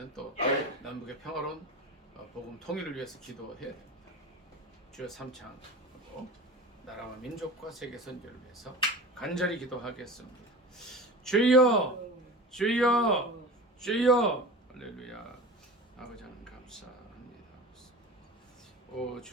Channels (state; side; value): normal; both; correlation 0.33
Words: 또 남북의 평화로운 복음 통일을 위해서 기도해야 됩니다. 주여 삼창하고 나라와 민족과 세계 선교를 위해서 간절히 기도하겠습니다. 주여 주여 주여 할렐루야. 아버지 하나님 감사합니다. 오